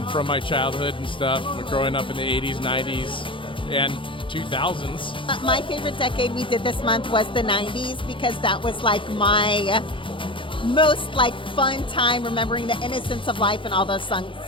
from my childhood and stuff, growing up in the 80s, 90s, and 2000s. My favorite decade we did this month was the 90s because that was like my most like fun time remembering the innocence of life and all those songs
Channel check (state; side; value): late; right; 0.25 ms